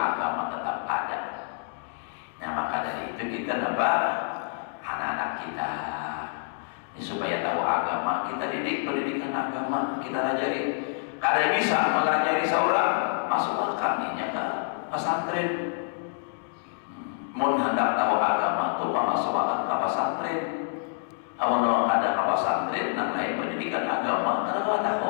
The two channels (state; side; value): silent; right; digital silence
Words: tetap ada. Nah, maka dari itu kita dapat anak-anak kita ini supaya tahu agama, kita didik pendidikan agama, kita ajari. Kada bisa mengajari seorang masuk akaminya ke pesantren. Mun hendak tahu agama itu masuk ke pesantren. Kalau ada ke pesantren, namanya pendidikan agama, kada